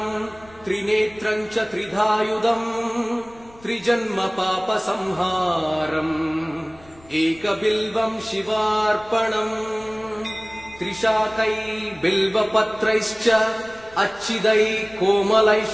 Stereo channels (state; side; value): noise; left; rumble, 25 dB below the sound